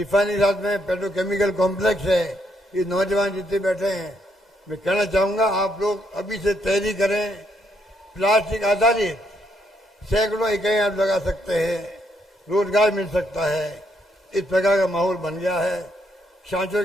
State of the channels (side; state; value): both; normal; correlation 0.74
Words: साथ में पेट्रोकेमिकल कॉम्प्लेक्स है, ये नौजवान जितने बैठे हैं, मैं कहना चाहूंगा आप लोग अभी से तैयारी करें। प्लास्टिक आधारित सैकड़ों इकाइयां आप लगा सकते हैं, रोजगार मिल सकता है। इस प्रकार का माहौल बन गया है। सांचों